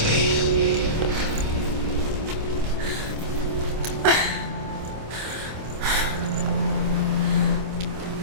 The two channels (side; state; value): left; late; 26 ms